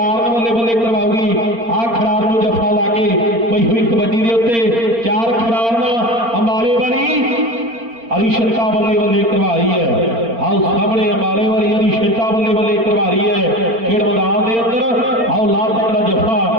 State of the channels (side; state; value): left; late; 4.4 ms